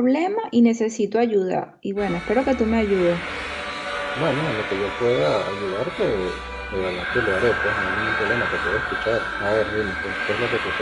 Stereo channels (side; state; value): both; identical; correlation 1.00